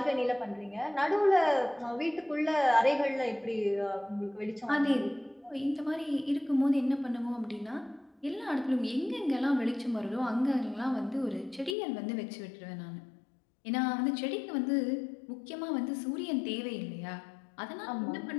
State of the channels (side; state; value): right; drops out; at 11.8 s